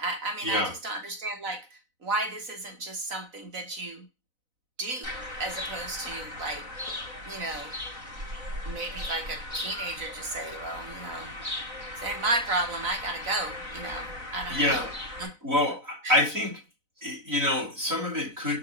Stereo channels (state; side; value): late; left; 4.0 ms